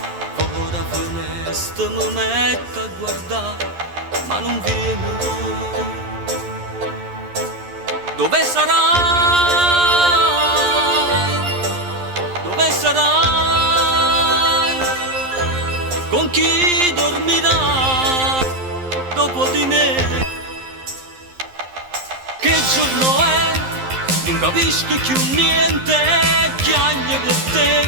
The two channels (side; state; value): left; late; 11 ms